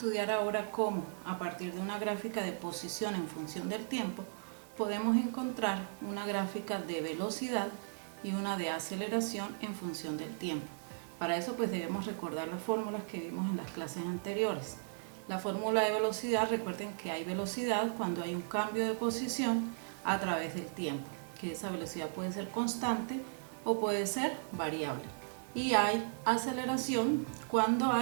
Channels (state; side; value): silent; left; digital silence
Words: ahora cómo, a partir de una gráfica de posición en función del tiempo, podemos encontrar una gráfica de velocidad y una de aceleración en función del tiempo. Para eso pues debemos recordar las fórmulas que vimos en las clases anteriores. La fórmula de velocidad, recuerden que hay velocidad cuando hay un cambio de posición a través del tiempo, que esa velocidad puede ser constante o puede ser variable. Y hay aceleración cuando